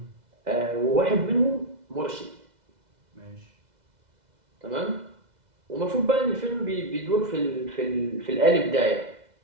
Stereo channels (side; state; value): left; late; 2.0 ms